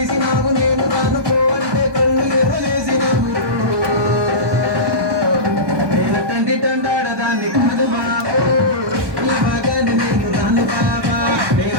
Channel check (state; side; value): late; left; 1.2 ms